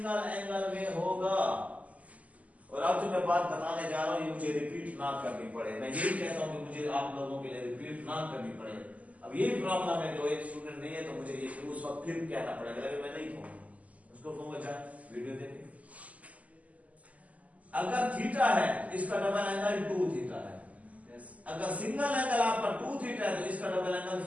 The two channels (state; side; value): late; left; 0.072 ms